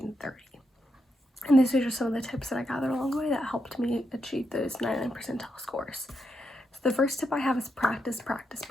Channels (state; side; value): normal; both; correlation 0.83